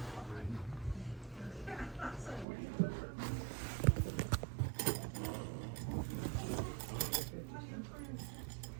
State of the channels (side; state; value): left; drops out; at 2.5 s